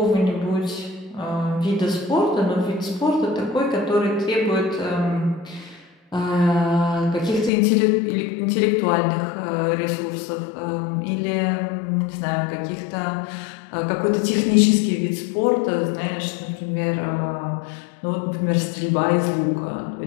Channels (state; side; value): drops out; right; at 7.5 s